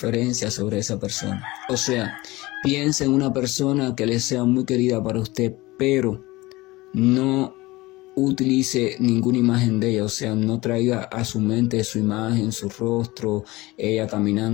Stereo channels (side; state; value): right; quieter; 20.4 dB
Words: sobre esa persona. O sea, piense en una persona que le sea muy querida para usted, pero no utilice ninguna imagen de ella. O sea, no traiga a su mente su imagen, su rostro, ella